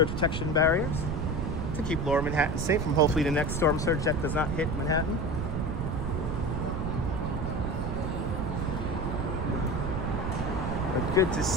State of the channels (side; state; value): right; noise; rumble, 2 dB below the sound